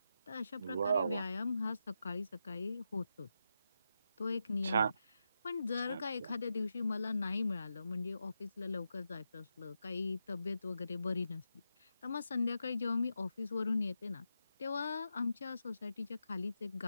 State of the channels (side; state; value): both; inverted; correlation -0.87